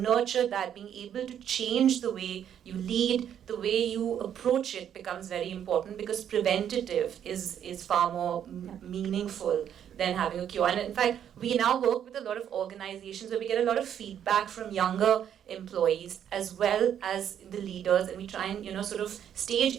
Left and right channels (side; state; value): left; quieter; 9.4 dB